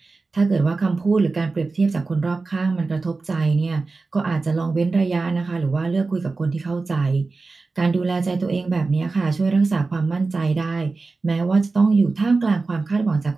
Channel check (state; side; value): quieter; left; 3.8 dB